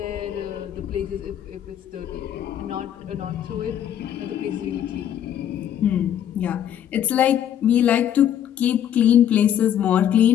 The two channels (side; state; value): right; quieter; 10.1 dB